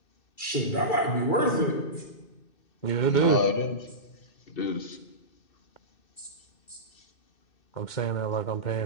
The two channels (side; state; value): right; late; 2.3 ms